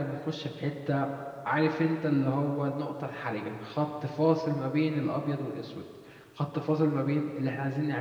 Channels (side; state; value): both; identical; correlation 1.00